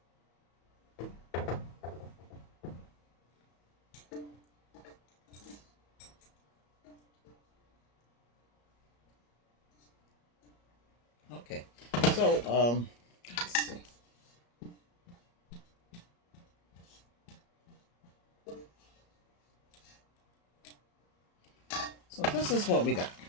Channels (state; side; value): late; right; 34 ms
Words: Okay, so let's see. So this is what we got.